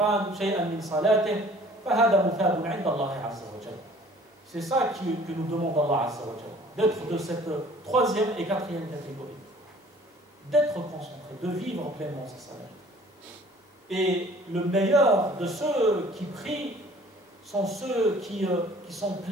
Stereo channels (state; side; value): normal; both; correlation 0.52